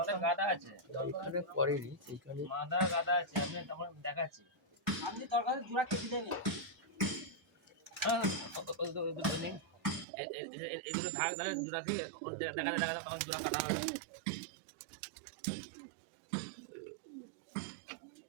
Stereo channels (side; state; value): left; drops out; at 10.1 s